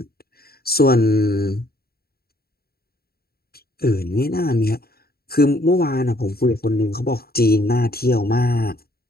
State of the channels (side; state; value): right; late; 0.45 ms